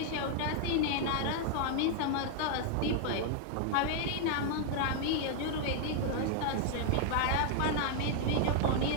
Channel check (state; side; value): different; both; correlation 0.00